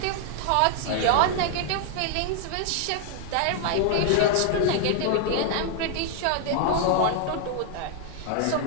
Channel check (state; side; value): different; both; correlation 0.00